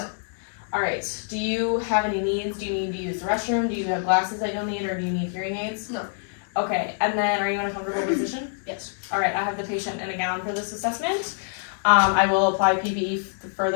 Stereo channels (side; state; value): right; silent; digital silence